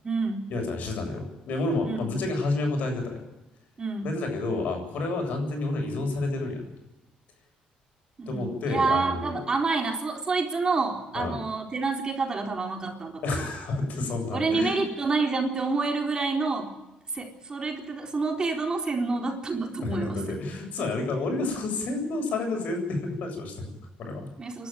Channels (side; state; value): both; normal; correlation 0.73